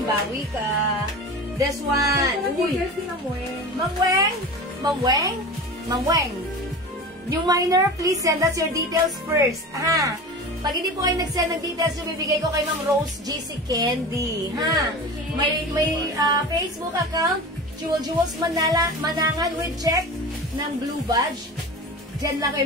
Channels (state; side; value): normal; both; correlation 0.32